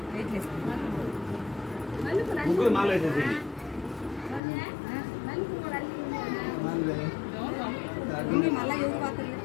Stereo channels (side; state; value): right; drops out; at 4.4 s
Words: ముగ్గురు మాల వేసేసి